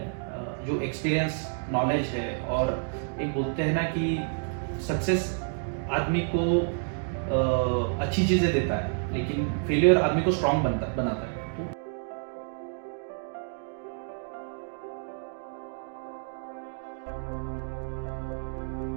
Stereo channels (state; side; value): silent; left; 58 dB below the other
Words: जो एक्सपीरियंस, नॉलेज है, और एक बोलते हैं ना कि सक्सेस आदमी को अच्छी चीज़ें देता है, लेकिन फेलियर आदमी को स्ट्रांग बनाता है। तो